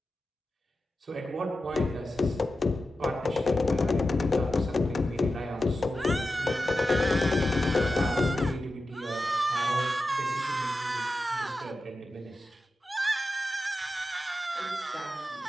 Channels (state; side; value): normal; both; correlation 0.92